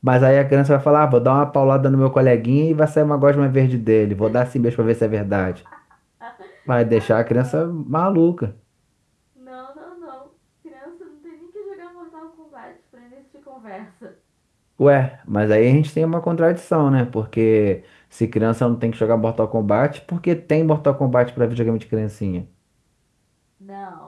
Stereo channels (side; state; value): both; identical; correlation 1.00